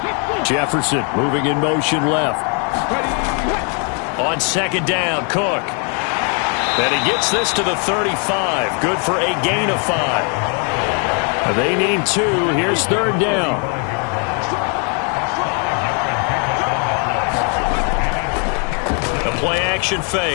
Jefferson moving in motion left. On 2nd down, Cook. And he gets this to the 35. Good for a gain of 5. They need 2. Here's 3rd down. A play-action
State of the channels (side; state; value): right; quieter; 38.7 dB